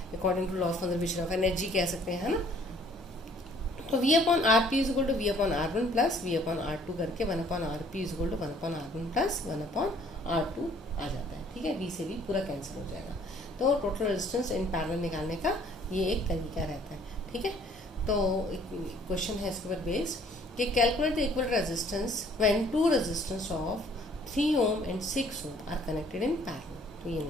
according to law of conservation of energy कह सकते हैं, है ना। तो V/RP is equal to V/R1 plus V/R2 करके 1/RP is equal to 1/R1 plus 1/R2 आ जाता है। ठीक है, V से V पूरा कैंसिल हो जाएगा। तो टोटल रेजिस्टेंस इन पैरेलल निकालने का ये एक तरीका रहता है। ठीक है, तो एक क्वेश्चन है इसके ऊपर बेस्ड कि calculate the equal resistance when two resistance of 3 ohm and 6 ohm are connected in parallel. तो ये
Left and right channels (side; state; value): both; normal; correlation 0.58